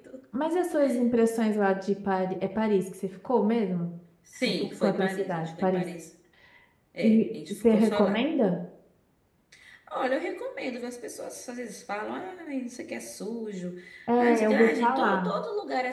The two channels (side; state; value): both; identical; correlation 1.00